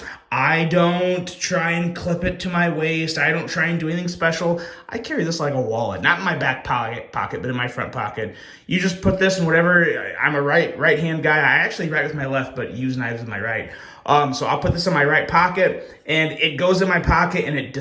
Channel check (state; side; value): identical; both; correlation 1.00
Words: I don't try and clip it to my waist. I don't try and do anything special. I carry this like a wallet, not in my back pocket, but in my front pocket. You just put this in whatever. I'm a right hand guy. I actually write with my left, but use knives with my right. So I'll put this in my right pocket, and it goes in my pocket, and it